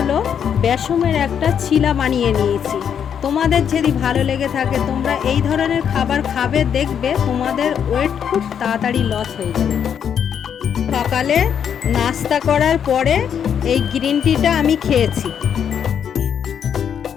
বেসমের একটা ছিলা বানিয়ে নিয়েছি। তোমাদের যদি ভালো লেগে থাকে তোমরা এই ধরনের খাবার খাবে, দেখবে তোমাদের ওয়েট খুব তাড়াতাড়ি লস হয়ে যাবে। সকালে নাস্তা করার পরে এই গ্রিন টিটা আমি খেয়েছি।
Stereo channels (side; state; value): right; quieter; 8.2 dB